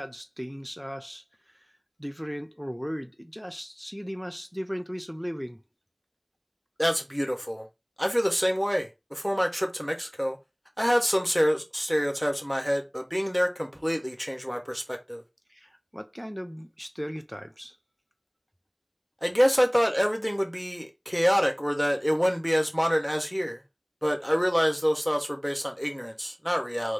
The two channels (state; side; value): identical; both; correlation 1.00